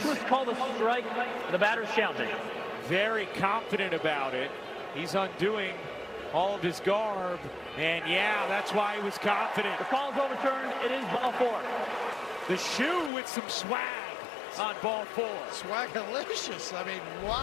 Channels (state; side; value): drops out; right; at 13.1 s